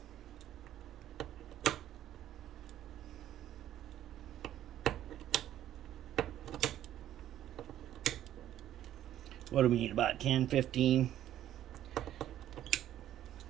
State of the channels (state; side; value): quieter; left; 12.1 dB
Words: What do we need? About 10, 15.